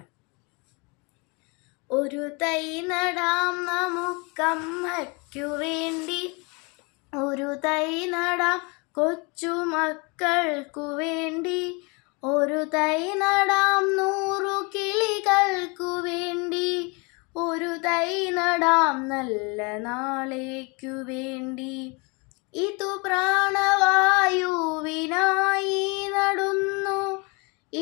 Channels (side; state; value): right; quieter; 30.2 dB